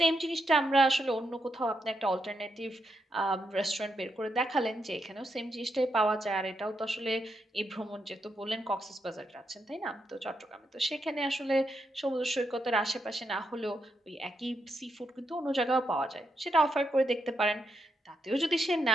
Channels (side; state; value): both; normal; correlation 0.82